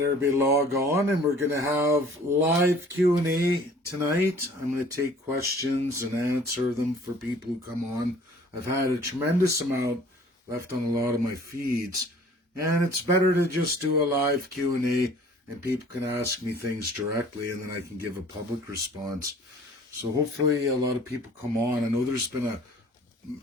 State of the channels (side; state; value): both; normal; correlation 0.51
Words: everybody log on and we're gonna have live Q&A tonight. I'm gonna take questions and answer them for people who come on. I've had a tremendous amount left on a lot of my feeds, and it's better to just do a live Q&A and people can ask me things directly and then I can give a public response. So hopefully a lot of people come on. I know there's been a